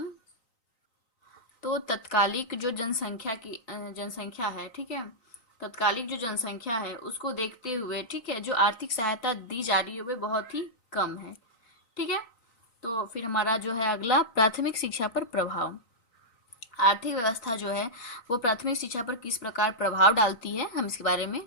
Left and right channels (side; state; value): right; late; 3.9 ms